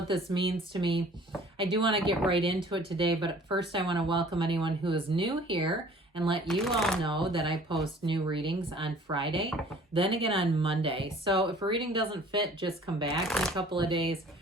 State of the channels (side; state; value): both; normal; correlation 0.51